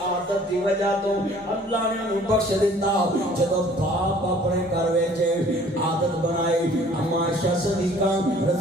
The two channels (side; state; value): both; normal; correlation 0.54